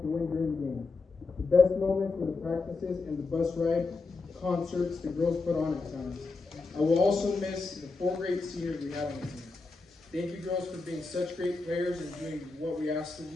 to win during the games. The best moments were the practices and the bus ride concerts the girls put on at times. I will also miss the 4 great seniors we had on the team. Thank you girls for being such great players and doing what we asked of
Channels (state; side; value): quieter; right; 3.9 dB